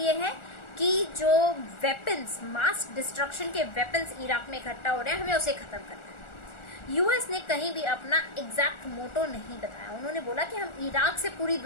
है कि जो वेपन्स, मास डिस्ट्रक्शन के वेपन्स इराक में इकट्ठा हो रहे हैं, हमें उसे ख़त्म करना है। यूएस ने कहीं भी अपना एग्जैक्ट मोटो नहीं बताया। उन्होंने बोला कि हम इराक से पूरी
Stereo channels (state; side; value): late; right; 1.4 ms